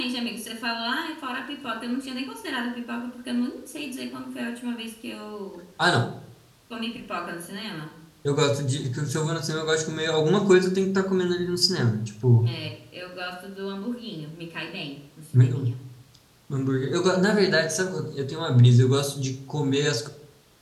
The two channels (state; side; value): identical; both; correlation 1.00